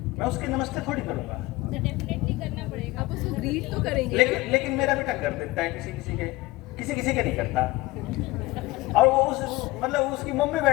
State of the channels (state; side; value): quieter; right; 20.1 dB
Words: मैं उसके नमस्ते थोड़ी करूंगा। तो डेफिनेटली करना पड़ेगा। आप उसको ग्रीट तो करेंगे। लेकिन मेरा बेटा कर देता है, किसी के नहीं करता। और वो मतलब उसकी मम्मी